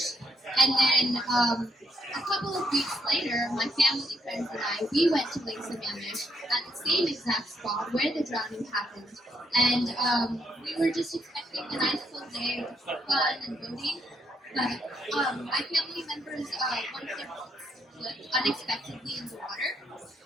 And then a couple of weeks later, my family, friends, and I, we went to Lake Sammamish at the same exact spot where the drowning happened. And we were just expecting a nice full day of fun and boating. But my family members, one of their boats slipped unexpectedly in the water.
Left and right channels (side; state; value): both; normal; correlation 0.74